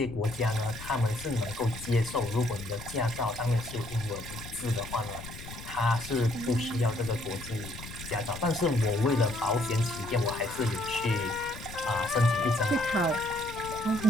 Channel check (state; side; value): noise; left; rumble, 13 dB below the sound